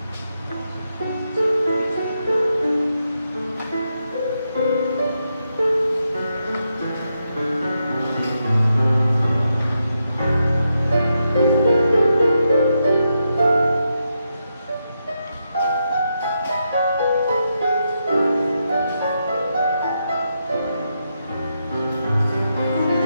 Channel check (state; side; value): inverted; both; correlation -0.84